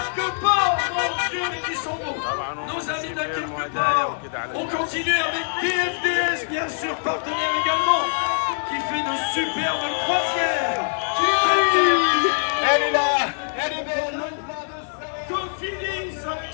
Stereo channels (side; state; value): right; silent; digital silence